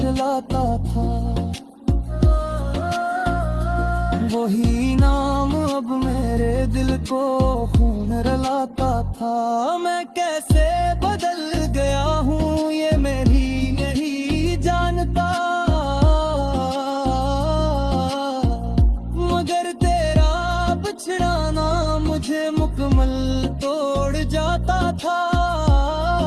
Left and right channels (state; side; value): identical; both; correlation 1.00